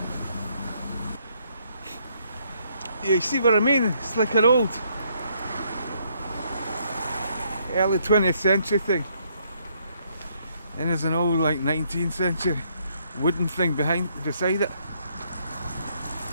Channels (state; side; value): inverted; both; correlation -0.71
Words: Yeah, you see what I mean? It's like an old early 20th century thing. And there's an old like 19th century wooden thing beside it.